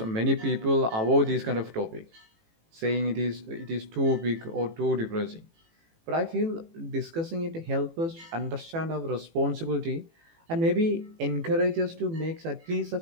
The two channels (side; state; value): left; late; 18 ms